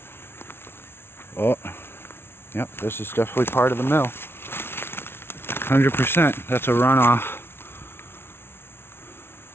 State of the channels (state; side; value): late; right; 0.12 ms